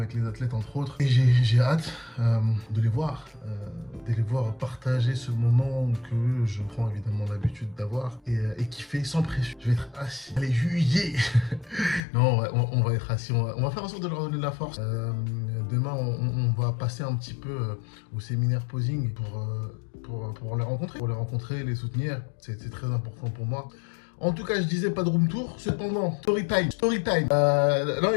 les athlètes, entre autres. Et j'ai hâte de les voir partager ce moment que je prends évidemment l'habitude d'avoir et qui fait sans pression. Je vais être assis. Allez, juillet. Non, on va être assis. On va faire en sorte de leur donner de la force. Demain, on va passer un petit peu au séminaire posing pour les rencontrer, les soutenir. C'est très important pour moi. En tout cas, je disais pas de room tour. Cependant, story time. Là,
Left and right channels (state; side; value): drops out; right; at 12.0 s